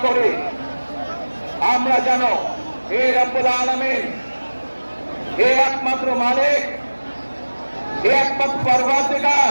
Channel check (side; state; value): both; inverted; correlation -1.00